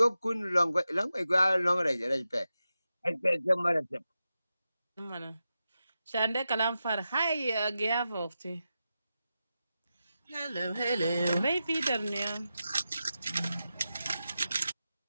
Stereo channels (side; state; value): both; inverted; correlation -0.91